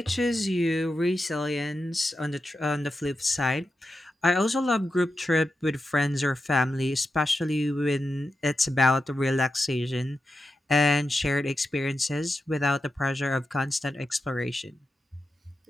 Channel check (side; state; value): both; normal; correlation 0.89